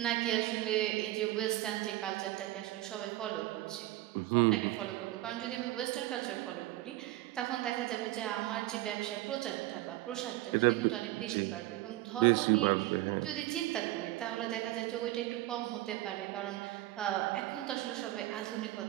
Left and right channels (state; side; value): quieter; left; 16.9 dB